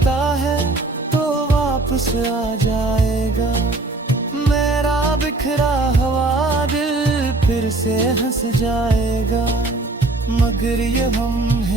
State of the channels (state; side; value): quieter; left; 3.1 dB